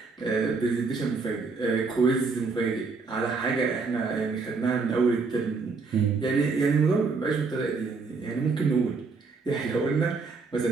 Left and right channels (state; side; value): quieter; left; 4.4 dB